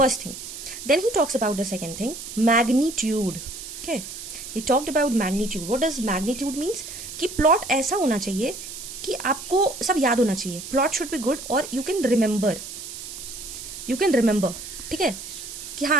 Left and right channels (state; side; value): noise; right; hiss, 10 dB below the sound